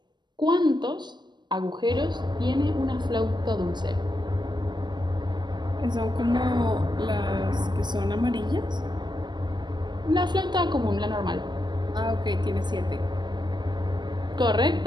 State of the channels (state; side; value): late; left; 0.21 ms